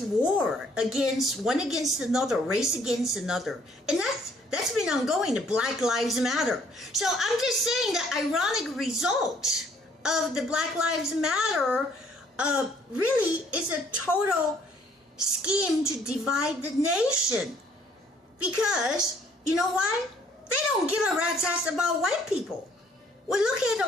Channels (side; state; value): both; normal; correlation 0.62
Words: war against another, race against another. And that's been ongoing, the Black Lives Matter. So I'm just saying the ironic result of the Black Lives Matter really is a total scheme to divide the nation. Because, you know why? They don't give a rat's ass about white people. Well, look at